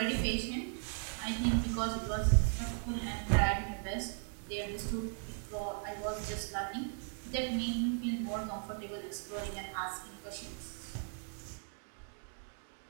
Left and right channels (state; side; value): silent; left; 53 dB below the other